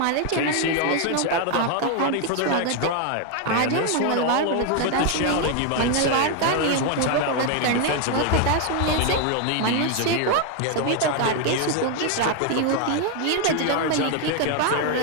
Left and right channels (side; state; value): both; different; correlation 0.01